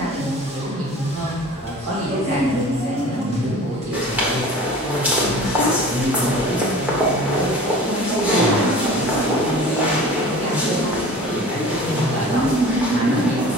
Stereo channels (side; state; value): both; normal; correlation 0.42